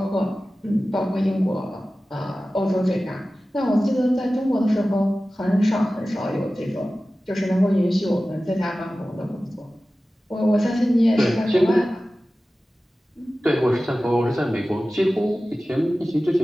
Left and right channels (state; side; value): normal; both; correlation 0.96